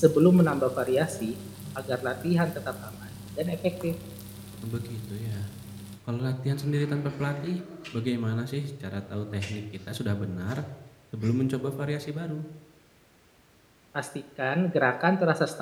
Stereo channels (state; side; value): identical; both; correlation 1.00